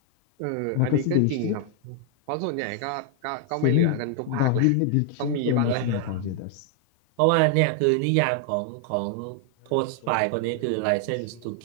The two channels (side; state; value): both; different; correlation 0.00